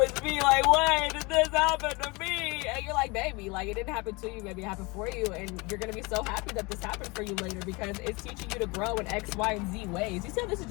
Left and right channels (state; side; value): quieter; right; 26.2 dB